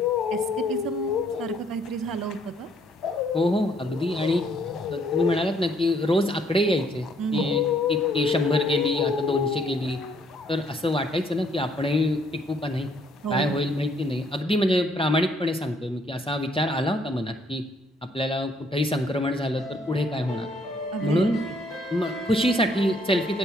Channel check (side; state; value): both; normal; correlation 0.67